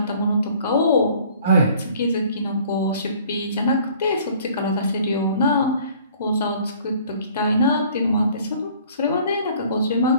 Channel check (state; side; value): inverted; both; correlation -0.54